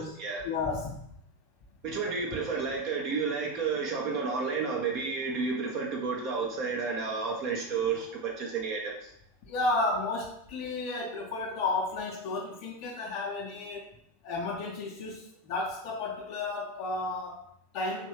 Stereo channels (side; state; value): both; normal; correlation 0.13